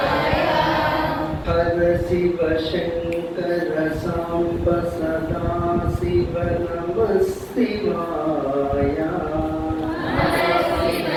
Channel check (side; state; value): both; identical; correlation 1.00